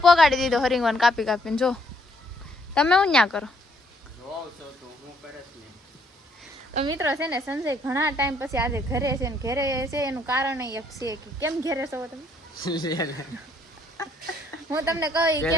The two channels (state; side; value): normal; both; correlation 0.68